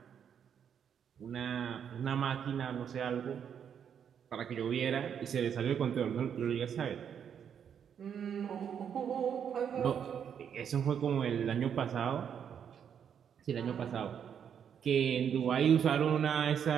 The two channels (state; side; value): quieter; left; 8.1 dB